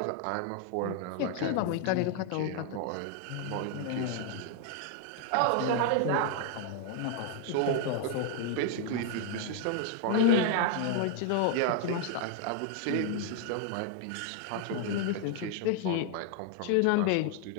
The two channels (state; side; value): different; both; correlation 0.00